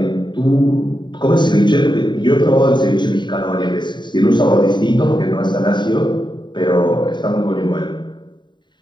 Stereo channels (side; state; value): right; late; 0.22 ms